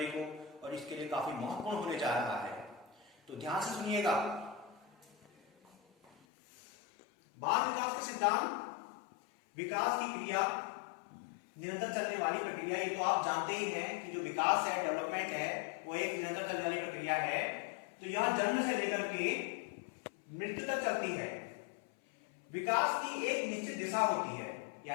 को, और इसके लिए काफी महत्वपूर्ण होने जा रहा है, तो ध्यान से सुनिएगा। बाल विकास के सिद्धांत विकास की क्रिया, निरंतर चलने वाली प्रक्रिया। ये तो आप जानते ही हैं कि जो विकास है, डेवलपमेंट है, वो एक निरंतर चलने वाली प्रक्रिया है। तो यह जन्म से लेकर के मृत्यु तक चलती है। विकास की एक निश्चित दिशा होती है,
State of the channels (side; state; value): right; drops out; at 6.2 s